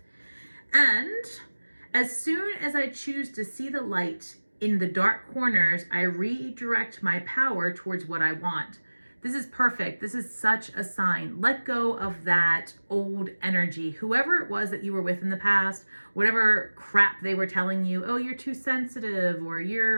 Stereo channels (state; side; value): inverted; both; correlation -1.00